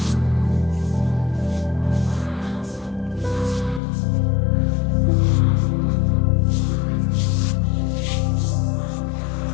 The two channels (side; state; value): right; drops out; at 3.8 s